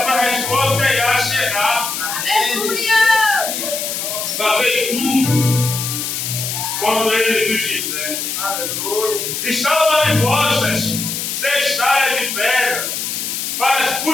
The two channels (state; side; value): noise; left; hiss, 3 dB below the sound